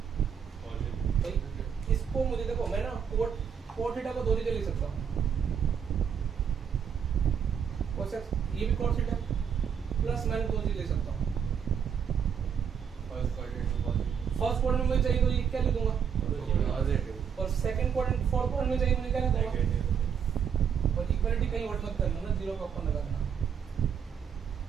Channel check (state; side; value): quieter; left; 7.5 dB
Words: भाई। इसको मुझे देखो मैं ना कोट थीटा को दो तरीके लिख सकता हूँ, कोसेक ये भी कोट थीटा प्लस माइनस दो तरीके लिख सकता हूँ। फर्स्ट क्वाड्रेंट में चाहिए तो ये क्या लिख दूंगा, और सेकंड क्वाड्रेंट फोर्थ क्वाड्रेंट में चाहिए मुझे क्या लिख दूंगा। और इक्वालिटी कहीं और मत करना ना, 0 का अपन लगाना।